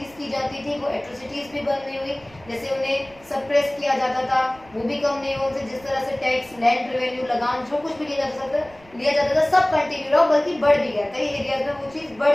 की जाती थी वो एट्रोसिटीज़ भी बंद नहीं हुई. जैसे उन्हें सप्रेस किया जाता था वो भी कम नहीं हुआ. उनसे जिस तरह से टैक्स, लैंड रेवेन्यू, लगान जो कुछ भी लिया जाता था सब कंटिन्यू रहा, बल्कि बढ़ भी गया. कई एरियाज में वो चीज़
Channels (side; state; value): right; noise; rumble, 26 dB below the sound